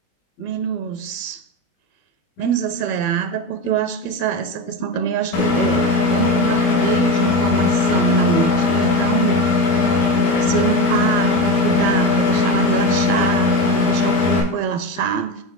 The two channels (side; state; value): right; late; 21 ms